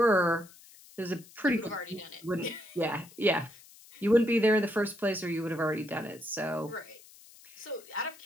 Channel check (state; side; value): noise; left; hiss, 22 dB below the sound